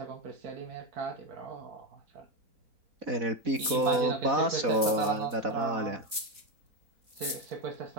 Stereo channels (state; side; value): late; left; 3.9 ms